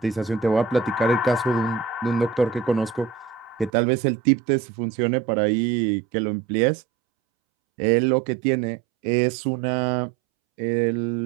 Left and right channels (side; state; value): left; drops out; at 3.7 s